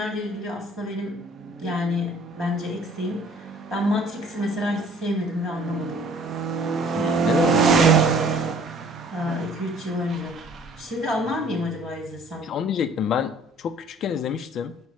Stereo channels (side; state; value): both; normal; correlation 0.54